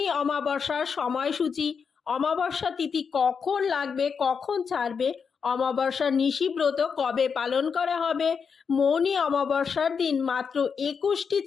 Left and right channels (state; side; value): quieter; right; 6.1 dB